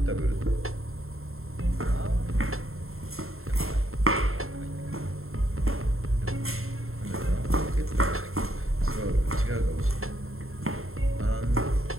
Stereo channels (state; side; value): late; left; 0.62 ms